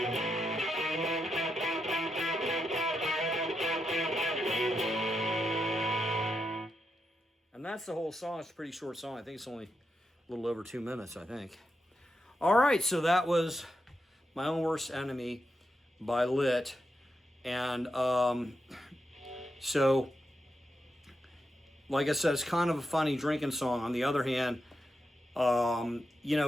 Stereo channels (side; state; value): both; normal; correlation 0.85